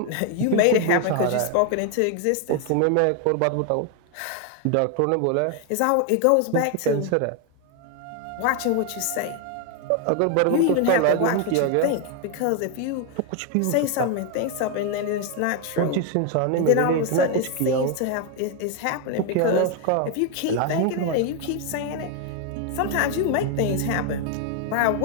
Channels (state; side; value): different; both; correlation 0.01